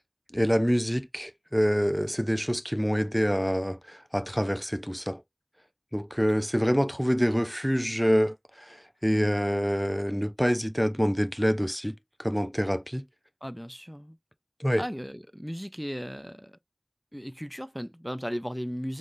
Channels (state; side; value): identical; both; correlation 1.00